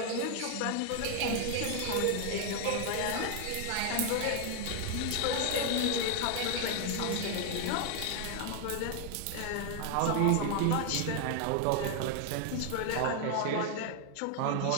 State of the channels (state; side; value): different; both; correlation 0.00